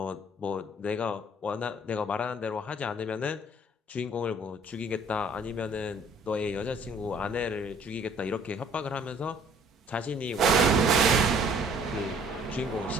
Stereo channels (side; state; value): both; normal; correlation 0.57